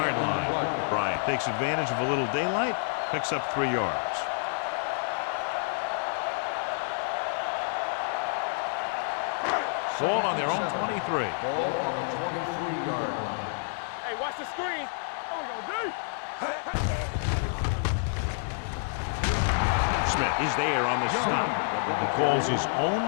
line. Bryant takes advantage of a little daylight, picks up 3 yards. Ball on their own 23. Ball on the 23-yard line. Hey, watch the screen. What we gonna do? Smith is there on the stop. He calls his own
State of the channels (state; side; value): silent; right; digital silence